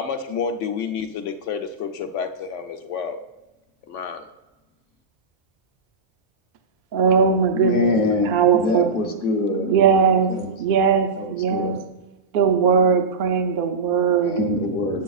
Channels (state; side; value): quieter; left; 3.7 dB